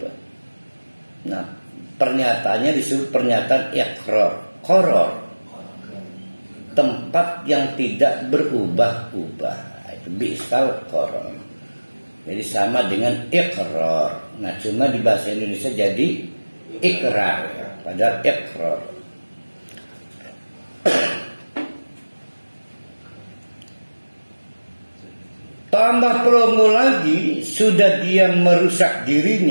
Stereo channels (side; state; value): both; inverted; correlation -1.00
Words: Nah, pernyataannya disebut pernyataan ikrar, qarar, tempat yang tidak berubah-ubah. Itu bi'sal qarar. Jadi sama dengan ikrar. Nah, cuma di bahasa Indonesia jadi ikrar, ya. Padahal ikrar. Tambah promo lagi, sudah dia merusak